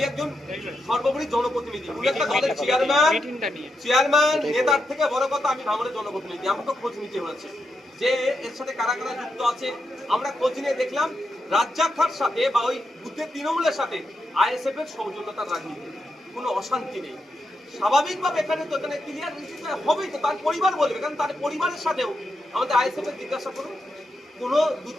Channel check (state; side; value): normal; both; correlation 0.85